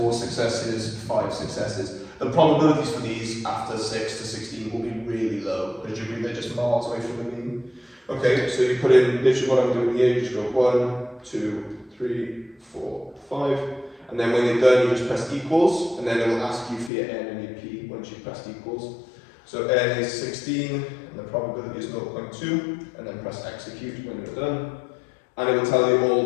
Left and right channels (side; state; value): right; drops out; at 16.9 s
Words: successes, 5 successes. The probabilities for these after 6 to 16 will be really low, because you agree they're just miles away from the mean. Okay, so you put in literally what I'm doing here, you just go 1, 2, 3, 4, 5, and then when you're done, you just press equals, and then it will ask you for your n and your p once you've pressed equals. So n is 16, and the probability is 0.2, and then press execute when you're done. And it will tell you all